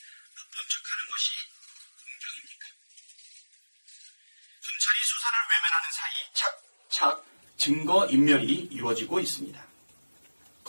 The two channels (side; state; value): both; inverted; correlation -1.00